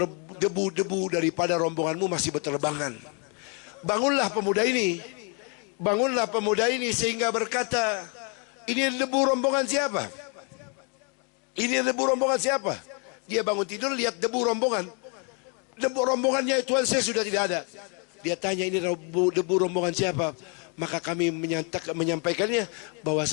debu-debu daripada rombonganmu masih berterbangan. Bangunlah pemuda ini, bangunlah pemuda ini sehingga berkata, ini debu rombongan siapa? Ini debu rombongan siapa? Dia bangun tidur lihat debu rombongan. Debu rombongannya Tuan Syekh sudah tidak ada. Dia tanya, ini debu rombongan siapa? Maka kami menyampaikannya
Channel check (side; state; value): right; quieter; 36.8 dB